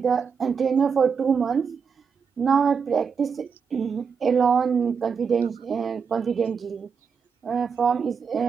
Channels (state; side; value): quieter; left; 6.1 dB